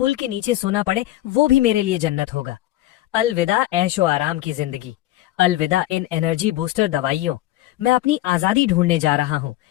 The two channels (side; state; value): right; quieter; 15.6 dB